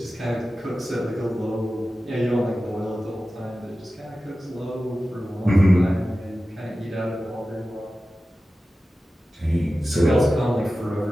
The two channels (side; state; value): both; normal; correlation 0.95